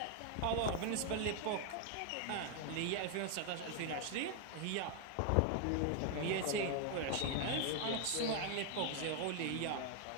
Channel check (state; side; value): different; both; correlation 0.00